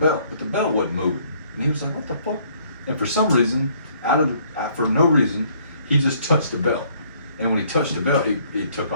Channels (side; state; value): both; inverted; correlation -0.62